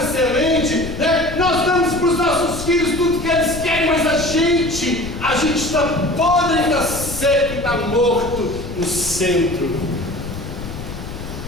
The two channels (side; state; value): left; noise; rumble, 10 dB below the sound